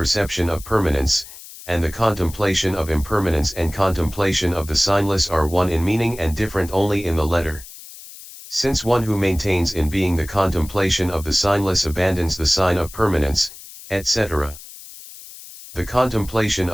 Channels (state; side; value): noise; left; hiss, 16 dB below the sound